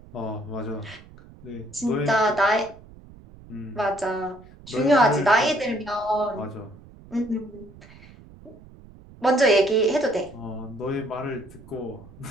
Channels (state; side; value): noise; right; rumble, 21 dB below the sound